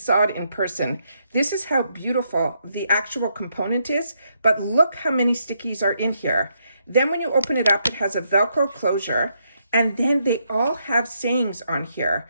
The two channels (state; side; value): inverted; both; correlation -0.77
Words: it in person. This is how beautiful the actual component is, but look how many stickies are in here. Then when you open it up, it has a Velcro closure, and then they all have sayings on here.